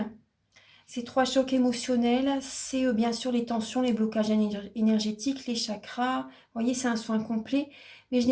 Ces 3 chocs émotionnels, c'est bien sûr les tensions, les blocages énergétiques, les chakras. Vous voyez, c'est un soin complet. Mais je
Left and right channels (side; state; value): both; identical; correlation 1.00